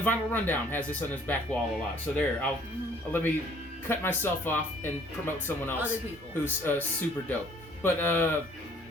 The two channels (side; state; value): both; normal; correlation 0.58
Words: Vinyl Rundown has this on his back wall a lot. So there, I'll let me cut myself off and promote someone else who's super dope. But